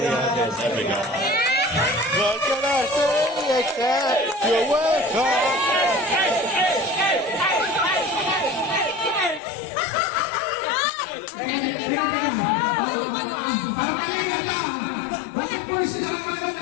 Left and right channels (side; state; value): right; drops out; at 9.4 s